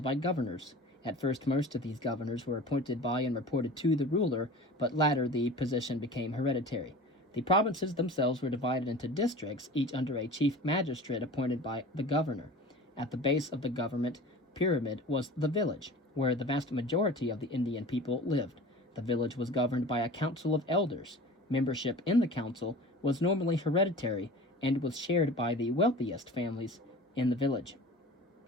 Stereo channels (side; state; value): both; normal; correlation 0.38